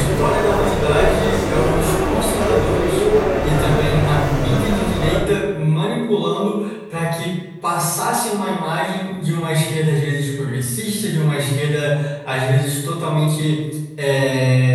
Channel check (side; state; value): both; identical; correlation 1.00